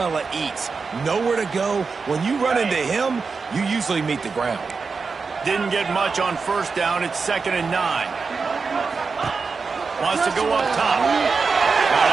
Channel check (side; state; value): left; quieter; 4.8 dB